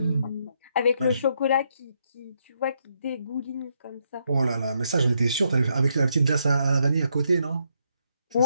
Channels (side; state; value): both; inverted; correlation -0.76